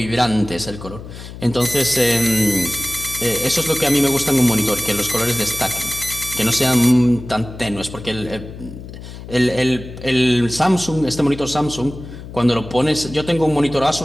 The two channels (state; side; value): noise; left; hum, 13 dB below the sound